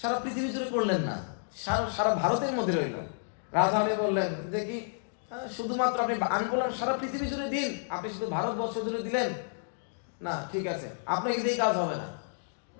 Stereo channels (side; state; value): right; silent; digital silence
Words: পৃথিবী জুড়ে করলেন না, সারা ভারতের মধ্যে রইল। রাধারানী বললেন যে কি শুধুমাত্র আমি বললাম সারা পৃথিবী জুড়ে দিন, আপনি শুধু ভারতবর্ষ জুড়ে দিলেন না, ঠিক আছে, আপনাকে দিয়ে কাজ হবে না।